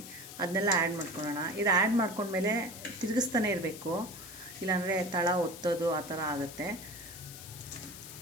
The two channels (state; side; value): noise; left; hiss, 13 dB below the sound